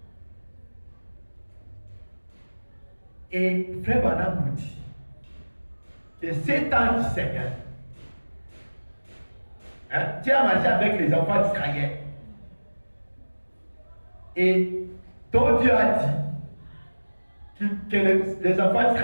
Et Frère Branham nous dit que cet ange du Seigneur, tu as marché avec les enfants d'Israël. Et ton Dieu a dit que les enfants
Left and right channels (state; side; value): inverted; both; correlation -1.00